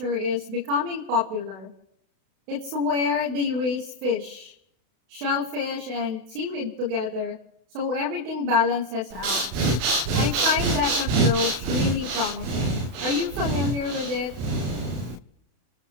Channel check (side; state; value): left; late; 32 ms